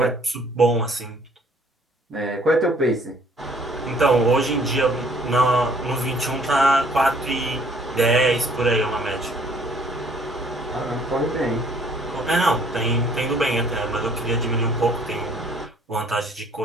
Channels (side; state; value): both; normal; correlation 0.59